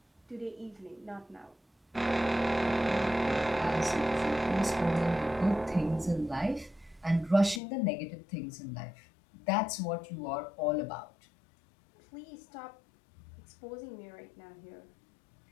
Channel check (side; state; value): right; drops out; at 7.6 s